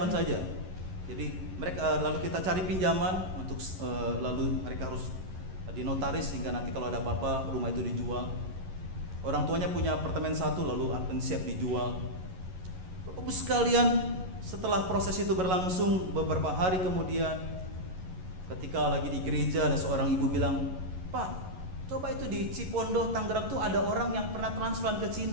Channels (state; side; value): late; left; 11 ms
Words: saja. Jadi mereka, lalu kita cari pinjaman untuk lalu mereka harus dinotaris sehingga nanti kalau ada apa-apa rumah itu dijual. Orang tuanya punya apartemen satu lalu akan siap dijual. Bapak Ibu sekalian, setelah proses itu berlangsung beberapa hari kemudian, ketika lagi di gereja ada seorang ibu bilang, "Pak, coba itu di Cipondoh, Tangerang tuh ada orang yang pernah transplant ke